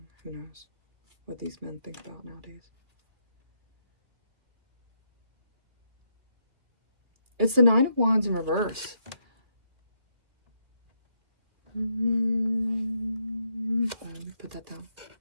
Who knows what these men think about nowadays. It's the Nine of Wands in reverse. Let me put that down.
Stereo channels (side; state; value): left; late; 2.3 ms